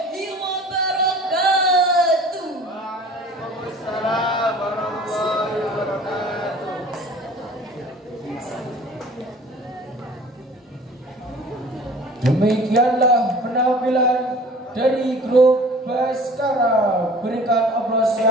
wabarakatuh. Waalaikumsalam warahmatullahi wabarakatuh. Demikianlah penampilan dari grup Baskara. Berikan aplaus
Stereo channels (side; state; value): both; normal; correlation 0.46